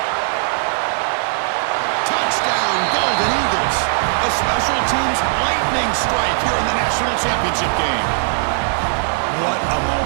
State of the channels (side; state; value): left; silent; 55 dB below the other